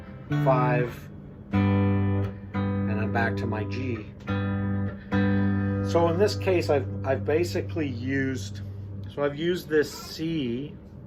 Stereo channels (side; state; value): both; identical; correlation 1.00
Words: 5, and I'm back to my G. So in this case, I've basically used, so I've used this C